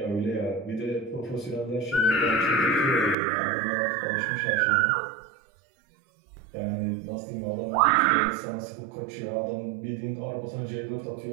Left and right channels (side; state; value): left; drops out; at 3.2 s